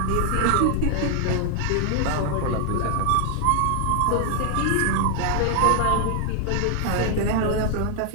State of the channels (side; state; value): both; different; correlation 0.00